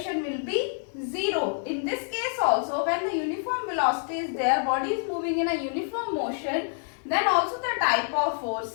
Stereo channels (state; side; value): silent; right; digital silence